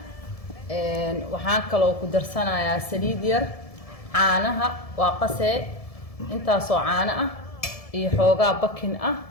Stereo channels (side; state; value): right; late; 1.7 ms